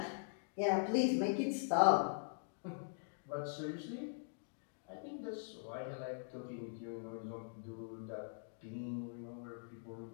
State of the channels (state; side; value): silent; right; digital silence